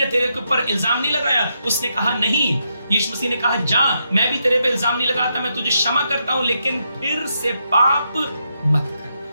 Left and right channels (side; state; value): both; inverted; correlation -0.81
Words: तेरे के ऊपर इल्जाम नहीं लगाया? उसने कहा नहीं। यीशु मसीह ने कहा, जा, मैं भी तेरे पे इल्जाम नहीं लगाता, मैं तुझे क्षमा करता हूं, लेकिन फिर से पाप मत कर।